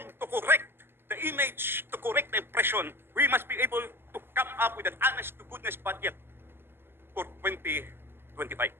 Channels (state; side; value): late; left; 0.11 ms